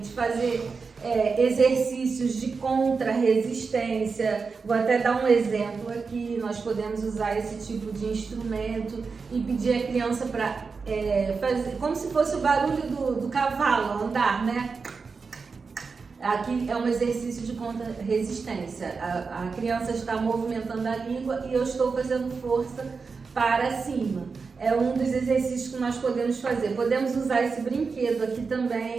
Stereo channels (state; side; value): quieter; left; 4.9 dB